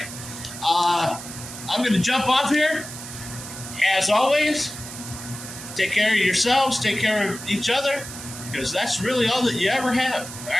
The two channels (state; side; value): noise; right; hiss, 11 dB below the sound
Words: I'm going to jump off here. As always, take care of yourselves, take care of each other, because that's really all that you ever have. All